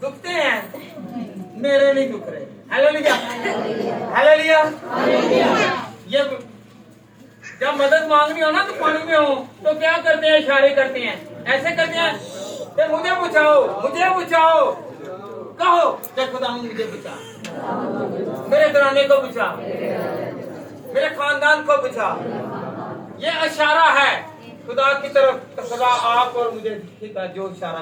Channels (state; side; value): identical; both; correlation 1.00